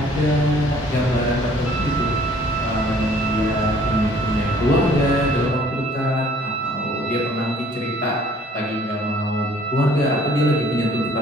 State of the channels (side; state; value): both; normal; correlation 0.57